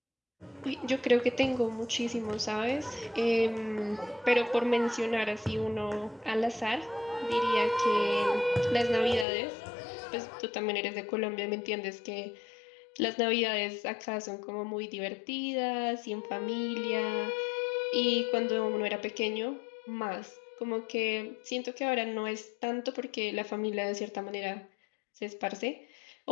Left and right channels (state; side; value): drops out; right; at 9.2 s